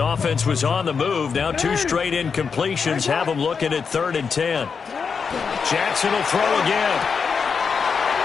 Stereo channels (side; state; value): right; quieter; 5.8 dB